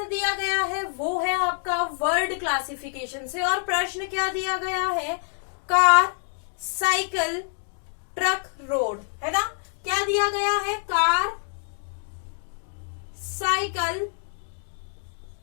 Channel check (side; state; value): right; silent; 61 dB below the other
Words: दिया गया है वो है आपका वर्ड क्लासिफिकेशन से, और प्रश्न क्या दिया गया है, कार, साइकिल, ट्रक, रोड, है ना। क्या दिया गया है, कार, साइकिल,